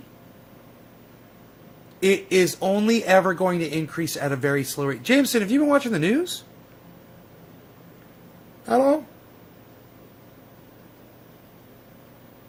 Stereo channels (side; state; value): both; identical; correlation 1.00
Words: It is only ever going to increase at a very slow rate. Jameson, have you been watching the news? At all?